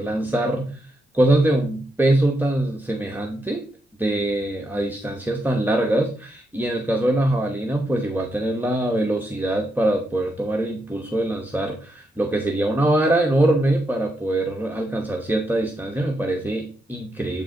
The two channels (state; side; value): normal; both; correlation 0.82